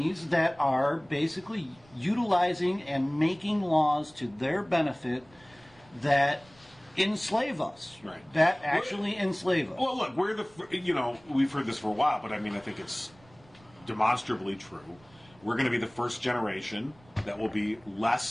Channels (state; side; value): noise; right; rumble, 28 dB below the sound